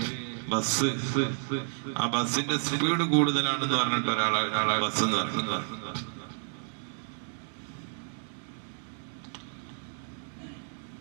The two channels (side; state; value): left; silent; digital silence